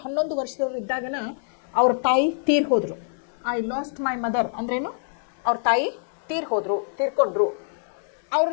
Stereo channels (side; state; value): right; silent; 62 dB below the other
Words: 11 ವರ್ಷದವ್ರು ಇದ್ದಾಗನ ಅವ್ರ ತಾಯಿ ತೀರ್ ಹೋದರು. ಐ ಲಾಸ್ಟ್ ಮೈ ಮದರ್ ಅಂದ್ರೇನು? ಅವ್ರ ತಾಯಿ ತೀರ್ಕೊಂಡ್ರು. ಅವ್ರ